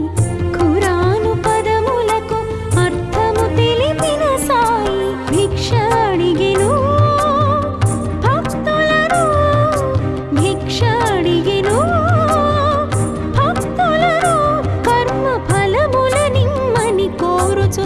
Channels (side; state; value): both; identical; correlation 1.00